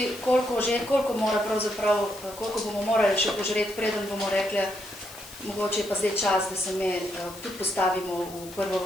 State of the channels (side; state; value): left; noise; hiss, 17 dB below the sound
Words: koliko bomo morali še požreti, preden bomo rekli, mogoče je pa zdaj čas, da se me tudi postavimo v prvo